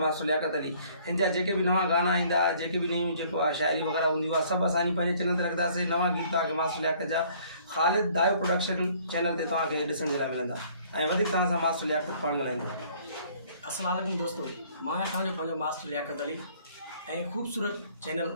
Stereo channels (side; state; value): both; inverted; correlation -0.58